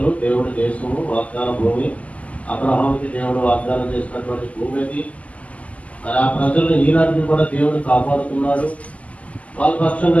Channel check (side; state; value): right; late; 0.070 ms